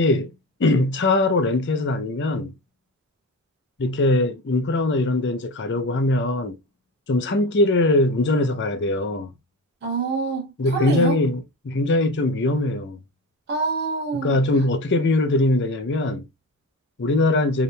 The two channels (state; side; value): normal; both; correlation 0.27